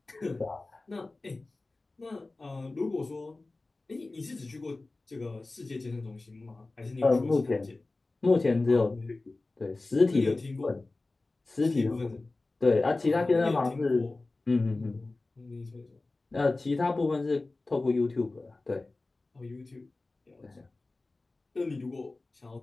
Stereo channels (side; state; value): right; quieter; 3.2 dB